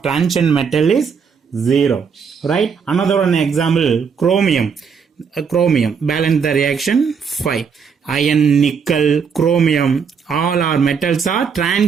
transition metal is 0. Right? Another one example, chromium. Balance the reaction 5. Iron, nickel, chromium, all our metals are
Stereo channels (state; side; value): quieter; left; 6.3 dB